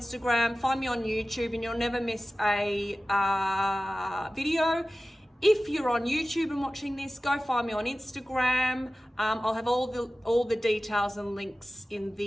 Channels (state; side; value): normal; both; correlation 0.96